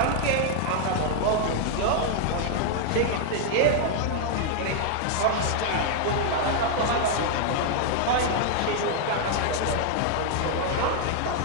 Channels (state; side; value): different; both; correlation 0.00